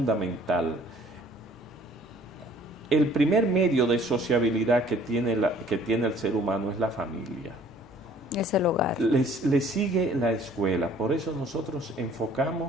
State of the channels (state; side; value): normal; both; correlation 0.56